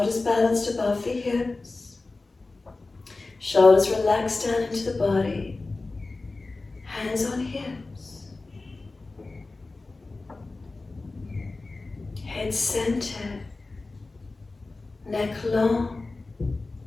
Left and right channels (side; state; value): right; quieter; 3.4 dB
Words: balanced above the hips. Shoulders relaxed down into the body. Hands on hips. Head centered. Neck long.